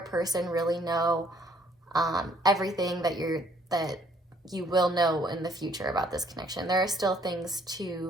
really know everything that you will know in the future about this connection. There are still things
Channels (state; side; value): normal; both; correlation 0.63